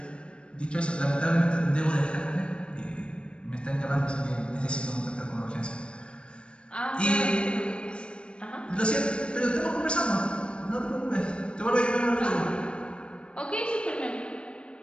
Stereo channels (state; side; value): late; right; 0.056 ms